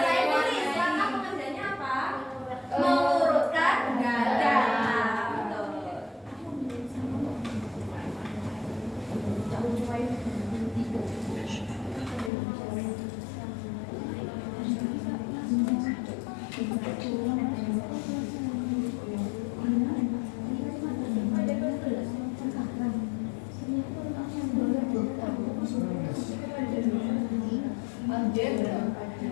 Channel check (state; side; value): drops out; right; at 12.3 s